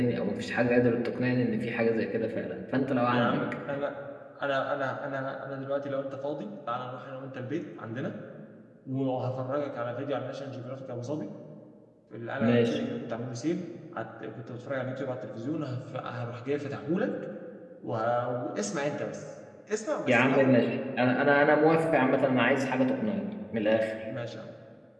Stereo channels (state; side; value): identical; both; correlation 1.00